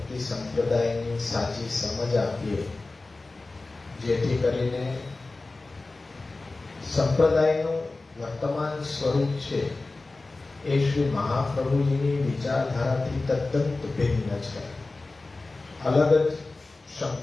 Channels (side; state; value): right; quieter; 3.4 dB